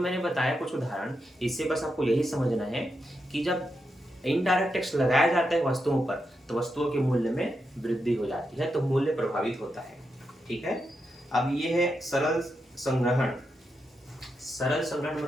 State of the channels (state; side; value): normal; both; correlation 0.85